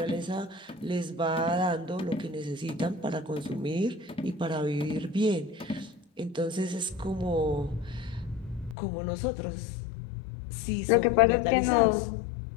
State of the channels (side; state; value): right; drops out; at 8.8 s